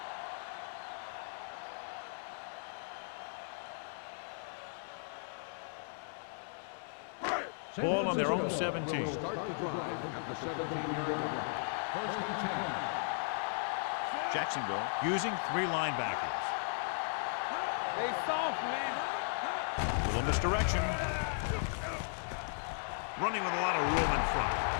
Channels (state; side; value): silent; right; digital silence